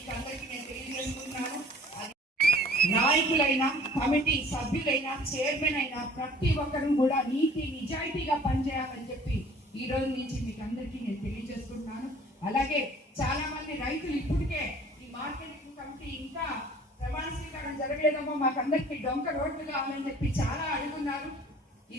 అందరికీ నేను తెలియజేసుకుంటున్నాను. నాయకులైనా కమిటీ సభ్యులైనా చైర్మన్ అయినా ప్రతి ఒక్కరు కూడా నీతి నిజాయితీగా పనిచేయాలని చెప్పి ఈ రోజు నుంచి మీకు అందరికీ నేను తెలియజేసుకుంటున్నాను. అలాగే చాలా మంది రైతులు ఇప్పటికే ఈ మార్కెటింగ్ కమిటీ ఇంకా ప్రమాణ స్వీకారం జరగలేదమ్మో మాకందరికి డొంక రోడ్లు కావాలని చెప్పి చాలా అడుగున్నారు.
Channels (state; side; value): normal; both; correlation 0.51